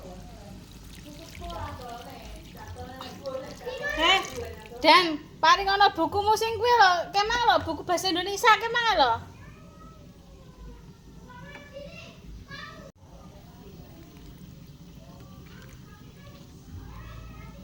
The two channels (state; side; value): identical; both; correlation 1.00